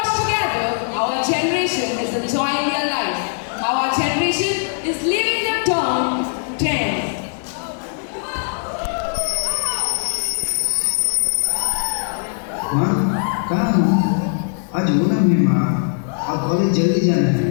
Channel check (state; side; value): silent; right; digital silence